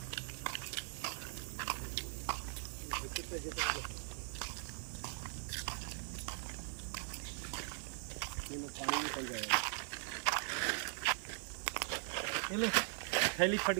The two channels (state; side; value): silent; left; 51 dB below the other